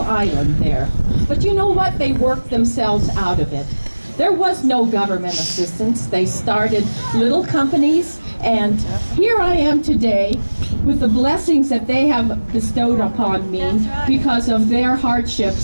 island there. But you know what? They worked themselves out of it. There was no government assistance. They started little companies, and here I am today with the blessings that they have bestowed upon me because of their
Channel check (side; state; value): both; inverted; correlation -1.00